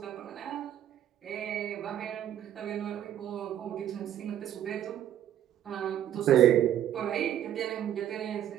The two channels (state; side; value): quieter; left; 11.0 dB